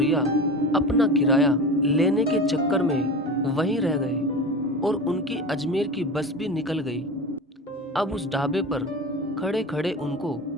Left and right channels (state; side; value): normal; both; correlation 0.30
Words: अपना किराया लेने के चक्कर में वहीं रह गए और उनकी अजमेर की बस भी निकल गई। अब उस ढाबे पर खड़े खड़े उनको